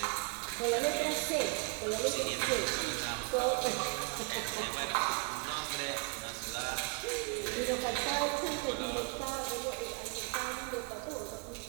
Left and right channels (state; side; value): quieter; left; 30.8 dB